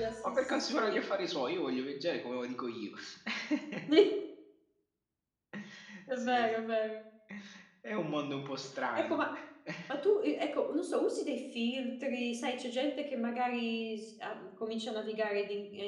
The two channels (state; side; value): identical; both; correlation 1.00